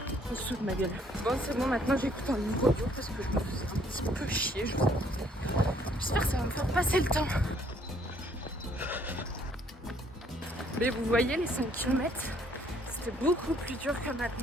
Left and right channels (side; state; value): both; normal; correlation 0.64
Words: En dessous de ma gueule. Bon, c'est bon, maintenant j'écoute un livre audio parce que je me faisais un petit peu chier, je vous avoue. J'espère que ça va me faire passer le temps. Mais vous voyez, les 5 km, c'était beaucoup plus dur que